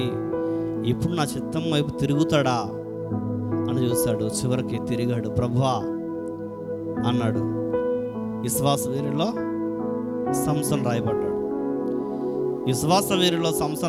ఇప్పుడు నా చిత్తం వైపు తిరుగుతాడా అని చూశాడు. చివరికి తిరిగాడు. ప్రభువా అన్నాడు. విశ్వాస వీరులో సంసోను రాయబడ్డాడు. విశ్వాస వీరులో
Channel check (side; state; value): both; identical; correlation 1.00